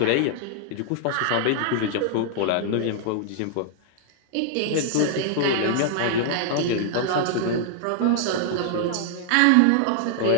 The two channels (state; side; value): different; both; correlation -0.01